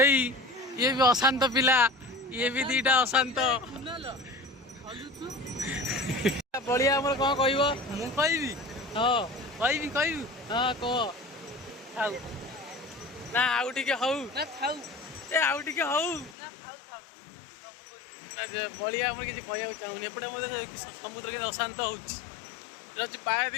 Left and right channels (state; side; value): drops out; right; at 16.4 s